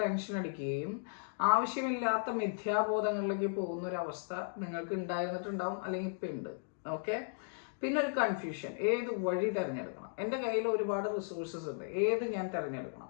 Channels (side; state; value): right; silent; digital silence